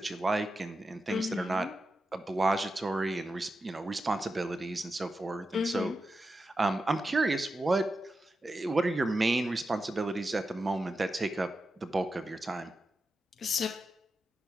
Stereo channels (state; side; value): normal; both; correlation 0.90